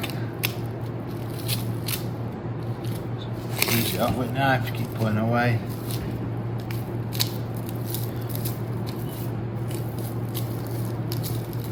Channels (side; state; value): both; identical; correlation 1.00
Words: Finish it off with a knife, keep pulling away.